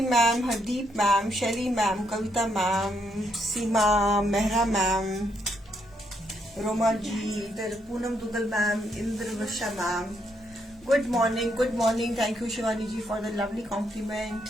ma'am, Hardeep ma'am, Shaily ma'am, Kavita ma'am, Seema, Mehra ma'am, Roma ji, इधर Poonam Duggal ma'am, Indra Varsha ma'am. Good morning. Thank you Shivani ji for the lovely compliment.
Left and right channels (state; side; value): normal; both; correlation 0.76